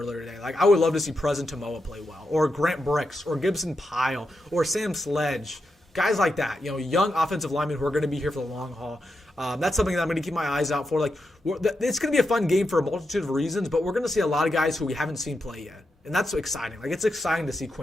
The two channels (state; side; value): normal; both; correlation 0.86